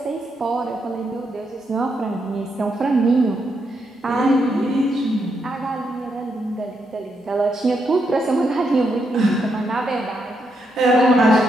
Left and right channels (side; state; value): both; normal; correlation 0.80